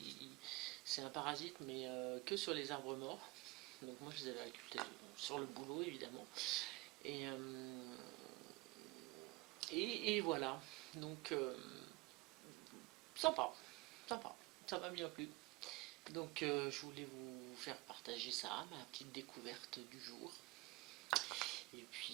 C'est un parasite, mais que sur les arbres morts. Donc moi je les avais récoltés sur le boulot évidemment. Et voilà. Donc sympa, ça m'a bien plu. Donc je voulais vous faire partager ça, ma petite découverte du jour. Et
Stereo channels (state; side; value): quieter; left; 23.9 dB